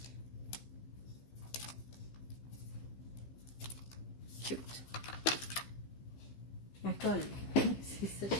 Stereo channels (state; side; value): late; right; 15 ms